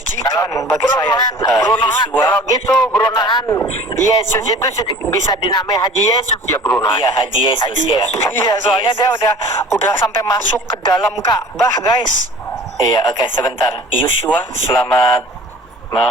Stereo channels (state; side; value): normal; both; correlation 0.45